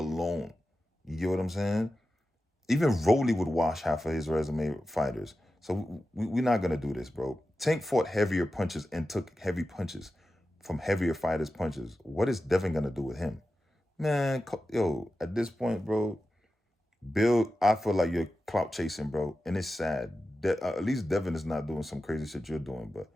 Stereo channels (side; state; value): both; normal; correlation 0.93